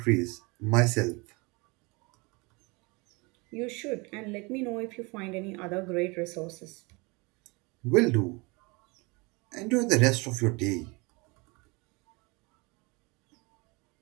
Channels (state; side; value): quieter; left; 27.4 dB